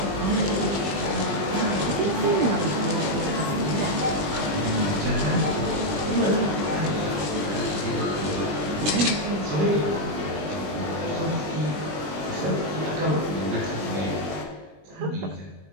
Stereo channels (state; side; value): late; left; 20 ms